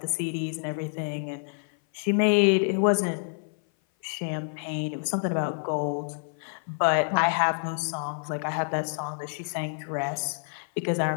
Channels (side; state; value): right; silent; 56 dB below the other